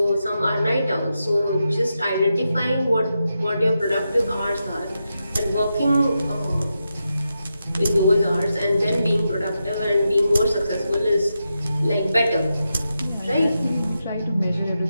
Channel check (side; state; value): both; inverted; correlation -0.87